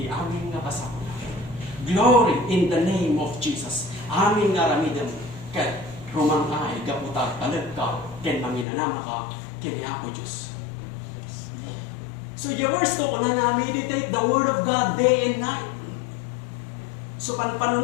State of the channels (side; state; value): right; drops out; at 8.7 s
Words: amin nga kasakulang. Glory in the name of Jesus. Amin nga ramidam, ket rumangay, gaputa talag ka, ken manginanama ka, ken ako Diyos. So yung verse to, una na meditate the Word of God day and night. So